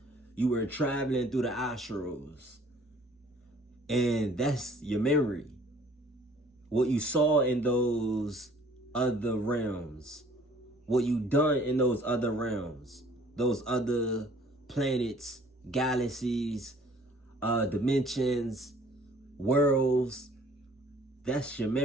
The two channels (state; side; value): normal; both; correlation 0.55